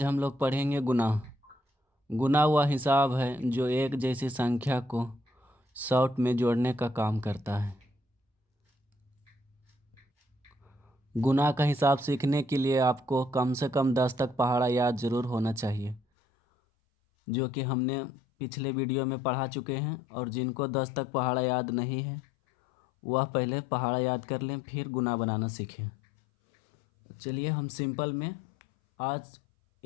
हम लोग पढ़ेंगे गुना। गुना वह हिसाब है जो एक जैसी संख्या को शॉर्ट में जोड़ने का काम करता है। गुना का हिसाब सीखने के लिए आपको कम से कम 10 तक पहाड़ा याद ज़रूर होना चाहिए, जो कि हमने पिछले वीडियो में पढ़ा चुके हैं। और जिनको 10 तक पहाड़ा याद नहीं है वह पहले पहाड़ा याद कर लें, फिर गुना बनाना सीखें। चलिए हम सिंपल में आज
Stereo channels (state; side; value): drops out; right; at 16.0 s